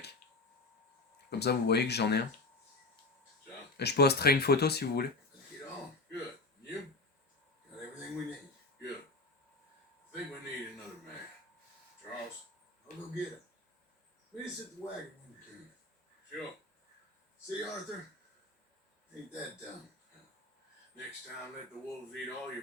Comme ça, vous voyez que j'en ai un. So, Et je posterai une photo si vous voulez. let's get on. Good. You? Got everything we need. Good. I think we need another man. Charles? I'll go get him. Meet us at the wagon when you can. Sure. See, Arthur? Ain't that dumb. Next time, let the wolves eat all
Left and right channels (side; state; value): right; quieter; 3.3 dB